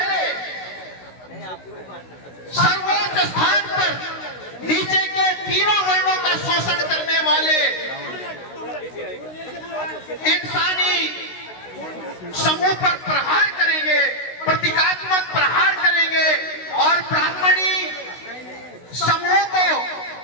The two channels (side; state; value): right; late; 16 ms